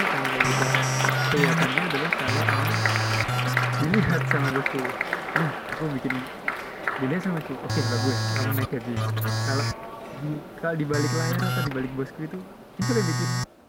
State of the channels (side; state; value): both; identical; correlation 1.00